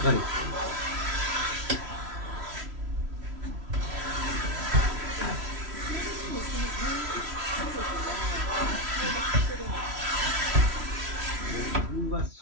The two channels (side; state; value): left; late; 3.1 ms